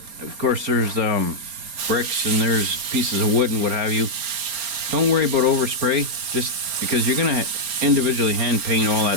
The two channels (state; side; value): late; left; 4.3 ms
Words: of course there's bricks and there's pieces of wood and what have you. Don't worry about overspray, just because you're going to individually hand paint all